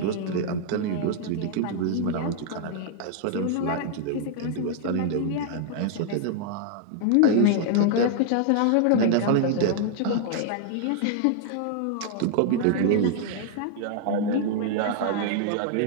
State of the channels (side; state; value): both; different; correlation 0.00